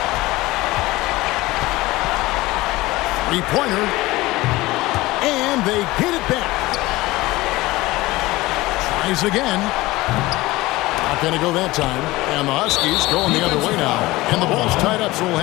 Three-pointer. And they get it back. Tries again. Not going to go that time. And the Huskies going the other way now. And the ball's tied up, so we'll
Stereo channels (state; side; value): quieter; right; 19.4 dB